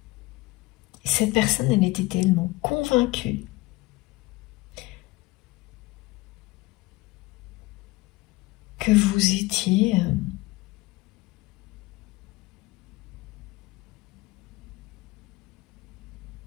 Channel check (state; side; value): quieter; right; 20.6 dB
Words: cette personne, elle était tellement convaincue que vous étiez